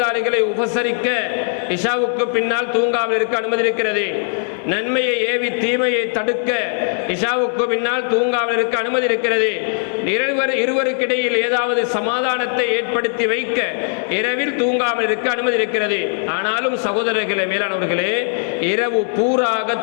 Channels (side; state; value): right; silent; digital silence